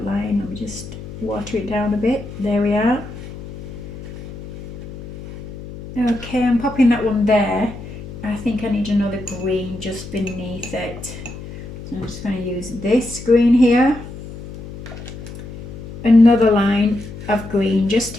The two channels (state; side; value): noise; left; hum, 12 dB below the sound